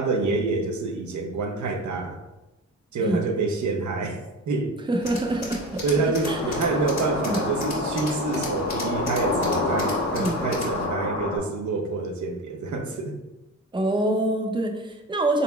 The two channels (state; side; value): normal; both; correlation 0.26